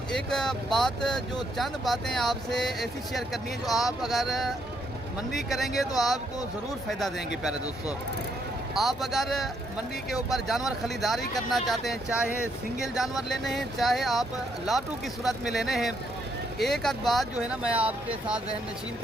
एक बात, जो चंद बातें आपसे ऐसी शेयर करनी है जो आप अगर मंडी करेंगे तो आपको ज़रूर फ़ायदा देंगे। प्यारे दोस्तों, आप अगर मंडी के ऊपर जानवर खरीदारी करना चाहते हैं, चाहे सिंगल जानवर लेने हैं, चाहे आप लाटू की सूरत में लेने हैं, एक आध बात जो है ना मैं आपके साथ जहन नशीन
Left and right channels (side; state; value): both; normal; correlation 0.74